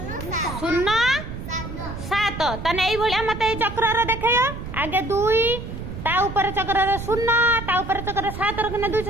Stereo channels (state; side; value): noise; right; rumble, 8 dB below the sound